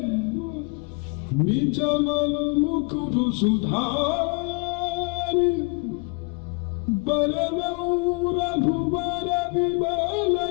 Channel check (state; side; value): quieter; right; 32.4 dB